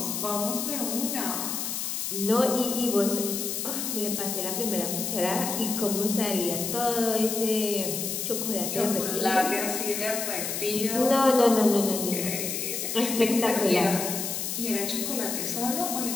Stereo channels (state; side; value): noise; left; hiss, 3 dB below the sound